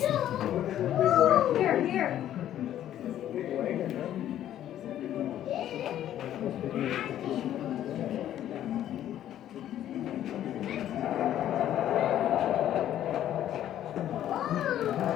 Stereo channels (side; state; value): right; quieter; 11.6 dB